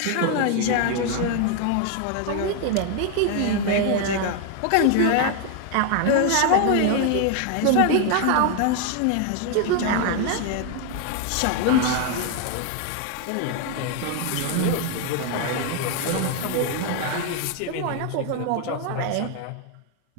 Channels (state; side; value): different; both; correlation 0.01